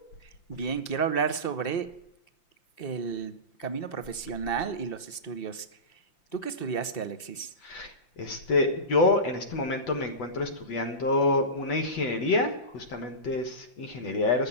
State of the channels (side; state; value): right; late; 5.8 ms